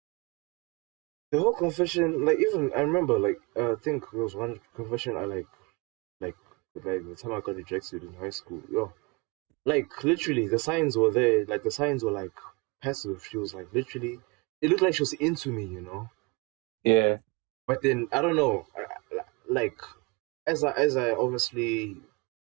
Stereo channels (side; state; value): left; quieter; 28.2 dB